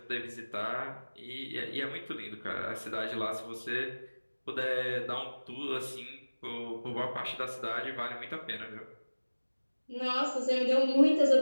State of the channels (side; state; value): both; inverted; correlation -1.00